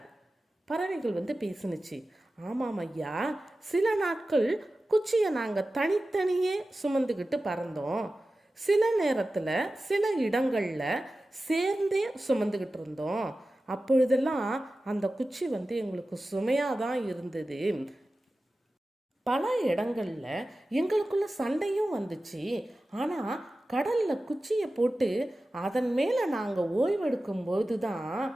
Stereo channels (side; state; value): both; normal; correlation 0.95